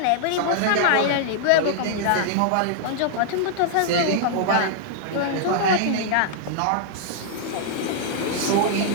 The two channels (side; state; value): both; different; correlation -0.01